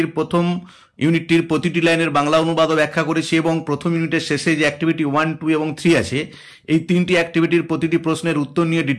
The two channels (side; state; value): both; identical; correlation 1.00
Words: প্রথম ইউনিটটির প্রতিটি লাইনের বাংলা অনুবাদও ব্যাখ্যা করেছি, এবং প্রথম ইউনিটের শেষে যে অ্যাক্টিভিটি 1, 2 এবং 3 আছে, এই তিনটি অ্যাক্টিভিটির প্রতিটি প্রশ্নের উত্তর নিয়ে